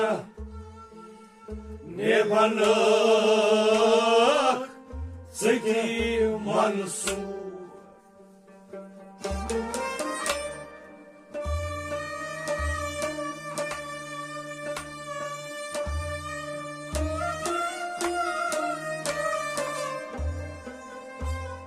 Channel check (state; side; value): identical; both; correlation 1.00